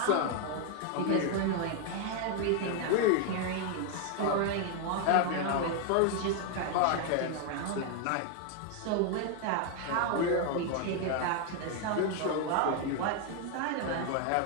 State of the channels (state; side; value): different; both; correlation 0.01